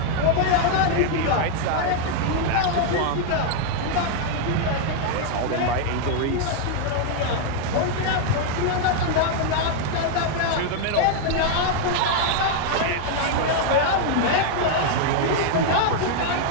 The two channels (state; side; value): different; both; correlation 0.00